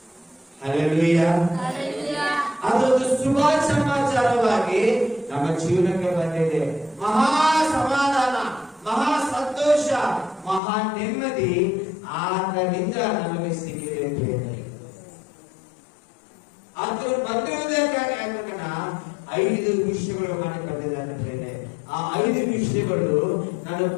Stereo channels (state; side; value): drops out; right; at 10.6 s